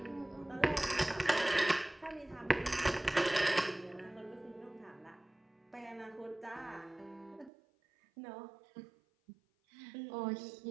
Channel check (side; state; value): left; drops out; at 7.5 s